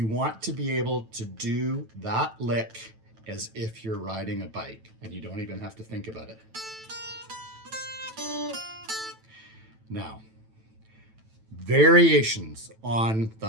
want to be able to do that lick as if you're riding a bike, and you don't even have to think about it. Now, variations on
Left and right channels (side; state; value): left; late; 9.1 ms